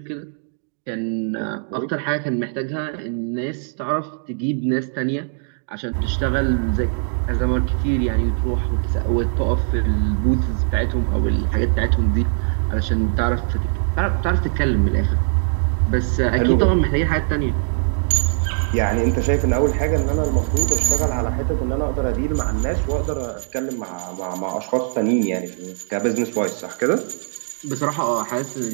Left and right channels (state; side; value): silent; left; digital silence